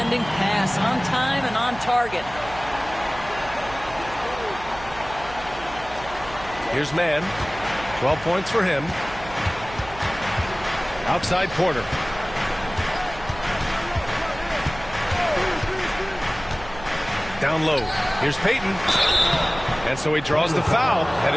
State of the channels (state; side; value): noise; right; hum, 16 dB below the sound